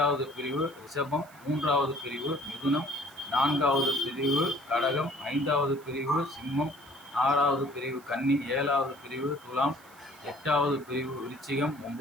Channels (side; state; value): right; noise; hiss, 25 dB below the sound